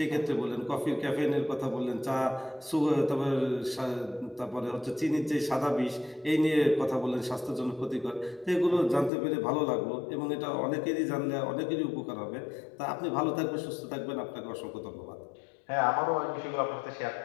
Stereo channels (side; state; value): right; drops out; at 9.1 s